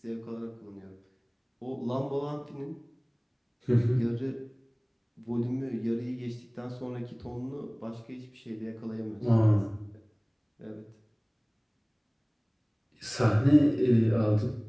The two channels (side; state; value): both; identical; correlation 1.00